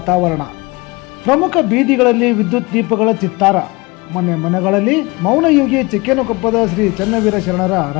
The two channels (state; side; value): quieter; right; 24.6 dB